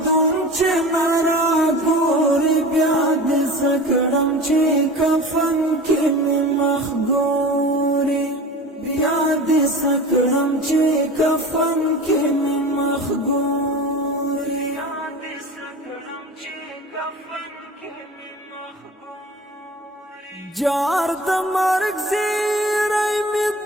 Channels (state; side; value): normal; both; correlation 0.35